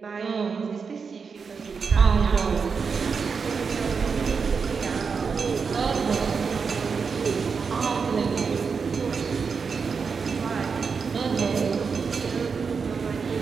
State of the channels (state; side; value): quieter; left; 5.5 dB